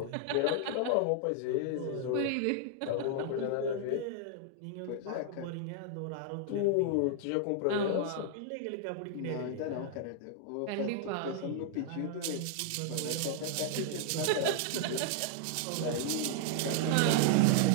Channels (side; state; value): both; different; correlation -0.01